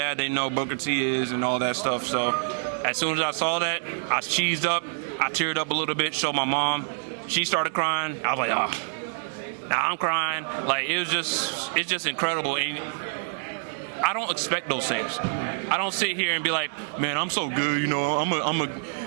they know Booker T is and all that stuff. So as soon as I saw that, I cheesed up. I teared up a little bit, showed my mom. She started crying. I was like, oh, now I'm crying. Like, it's just incredible. And I don't expect those things. I don't sit here and be like, man, I'm so good, you know,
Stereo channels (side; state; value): left; silent; digital silence